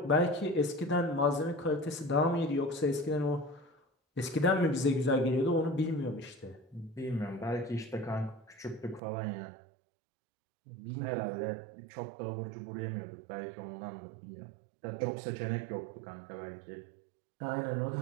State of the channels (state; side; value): drops out; left; at 9.0 s